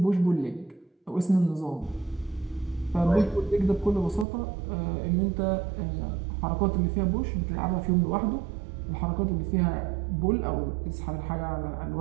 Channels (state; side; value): drops out; left; at 4.2 s